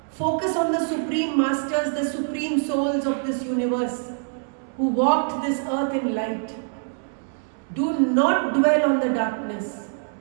focus on the Supreme Masters, the Supreme Souls of this universe who walked this earth in light. Do not dwell on the darkness.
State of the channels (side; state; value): left; silent; digital silence